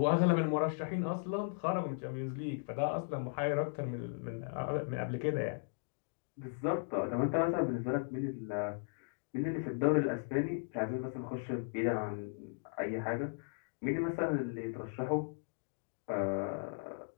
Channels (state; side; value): silent; right; digital silence